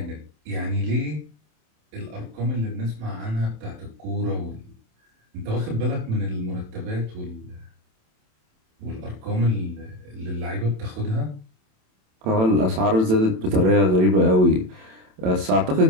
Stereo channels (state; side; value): late; left; 27 ms